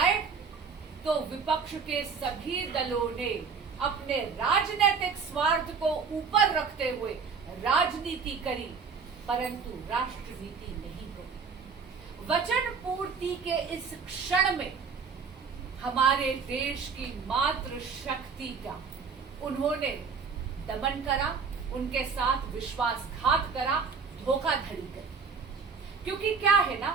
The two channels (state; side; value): quieter; left; 5.5 dB